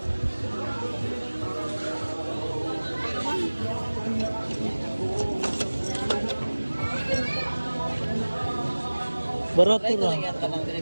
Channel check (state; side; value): inverted; both; correlation -1.00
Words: Barato Try ko ra. lang yan kanang diri